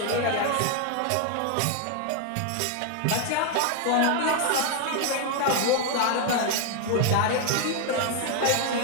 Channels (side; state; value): both; different; correlation 0.01